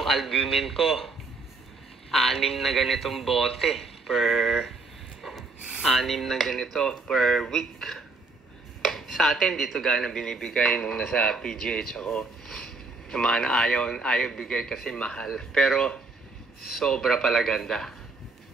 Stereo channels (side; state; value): left; quieter; 3.7 dB